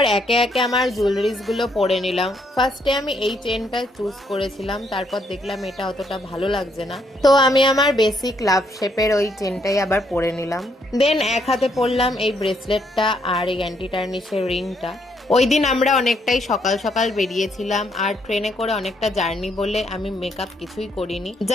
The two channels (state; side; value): normal; both; correlation 0.73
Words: একে একে আমার জুয়েলারিজ গুলো পরে নিলাম। ফার্স্টে আমি এই চেনটা চুজ করেছিলাম, তারপর দেখলাম এটা অতটা ভালো লাগছে না, তো আমি আমার বেসিক লাভ শেপের ওই চেনটাই আবার পরে নিলাম। দেন এক হাতে পরলাম এই ব্রেসলেটটা আর এই অ্যান্টি টার্নিশের রিংটা। ওই দিন আমরা অনেকটাই সকাল সকাল বেরিয়েছিলাম আর ট্রেনে করে অনেকটা জার্নি বলে আমি মেকআপ কিছুই করিনি,